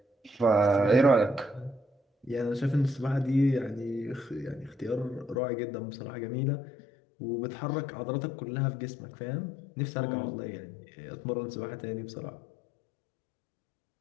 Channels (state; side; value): drops out; right; at 5.4 s